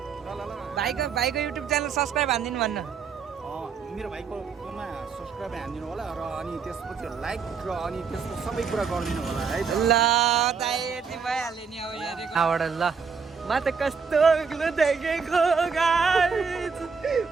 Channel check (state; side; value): quieter; left; 5.7 dB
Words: भाइको युट्युब च्यानल सब्सक्राइब हानिदिनु भन्न। मेरो भाइकोमा सब्सक्राइब हानिदिनु होला र अनि त्यसपछि लाइक र अनि त्यसको सबै कुरा गरिदिनु होला है। ल दाइ यति भइहाल्यो नि। अब यहाँबाट ल म त कस्तो अग्लो देखेको गाइस,